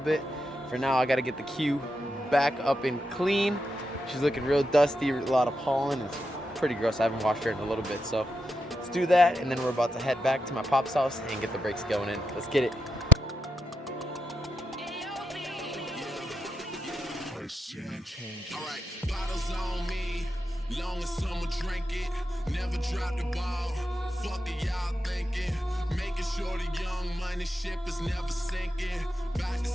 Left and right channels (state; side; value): normal; both; correlation 0.83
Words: For now, I gotta get the Q back up and clean. She's looking real dusty, a lot of pollen. It's pretty gross. I haven't washed her in a little bit, so let's do that. And then we're about to head back to my pop's house and get the brakes going in. Let's get it. Alright, bottles on me, long as someone drink it, never drop the ball, fuck it y'all thinking, making sure the young money ship is never sinking, about to